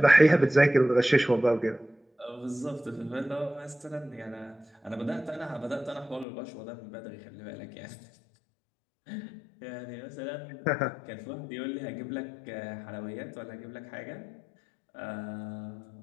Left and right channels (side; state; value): right; drops out; at 6.2 s